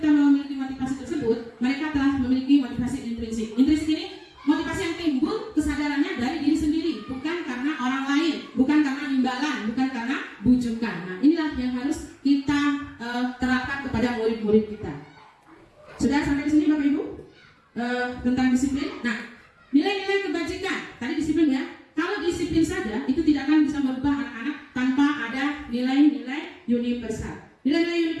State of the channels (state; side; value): identical; both; correlation 1.00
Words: memiliki motivasi tersebut, mereka telah memiliki motivasi intrinsik. Intrinsik ini motivasi yang timbul kesadarannya dari diri sendiri, bukan karena orang lain, bukan karena imbalan, bukan karena bujukan. Nah, inilah yang harus kita terapkan kepada murid-murid kita. Sudah sampai di sini Bapak Ibu tentang disiplin. Nah, nilai-nilai kebajikan tadi disiplin ya. Kalau disiplin saja itu tidak akan bisa merubah anak-anak tanpa ada nilai-nilai universal. Nilai-nilai